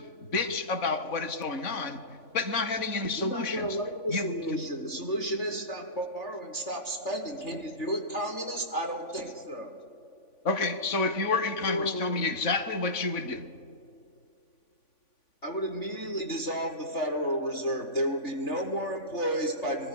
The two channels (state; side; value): late; right; 3.5 ms